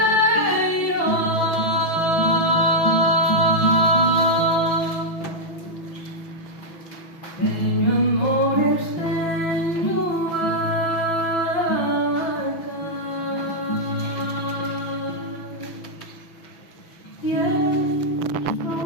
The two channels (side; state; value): right; late; 6.1 ms